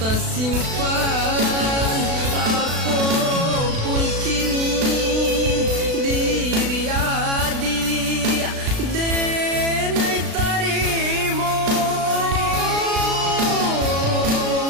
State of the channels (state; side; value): late; left; 36 ms